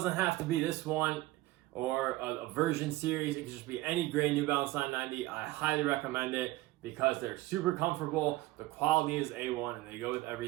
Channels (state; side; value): quieter; left; 18.2 dB